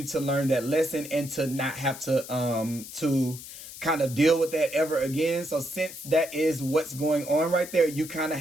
to learn that lesson and to not have to kind of deal with that ever again. So since that is what's going on right there, you kind of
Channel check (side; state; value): left; noise; hiss, 13 dB below the sound